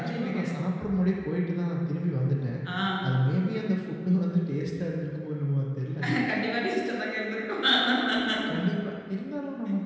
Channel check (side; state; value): both; identical; correlation 1.00